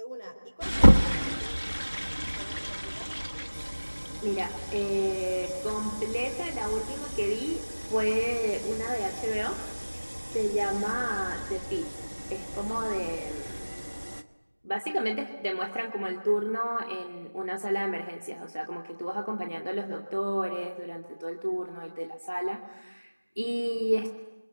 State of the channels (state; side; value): inverted; both; correlation -1.00